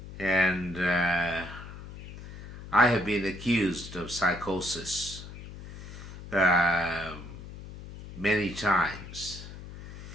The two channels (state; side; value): noise; left; hum, 13 dB below the sound